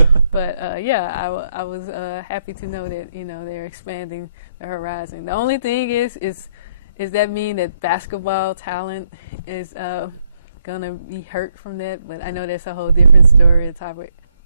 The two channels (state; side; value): inverted; both; correlation -0.73